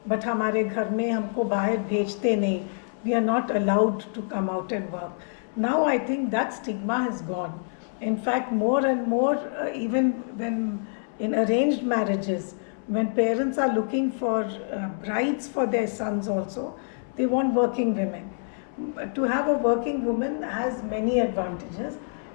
but हमारे घर में हमको बाहर भेजते नहीं. We are not allowed to come out and work. Now I think that stigma has gone. In fact, more and more, even when in arranged marriages, when parents are looking for brides for their sons also, they want working women. To have a working woman has many advantages.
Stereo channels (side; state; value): right; silent; 61 dB below the other